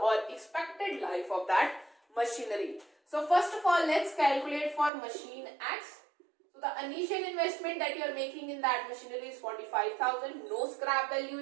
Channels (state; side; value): drops out; left; at 4.9 s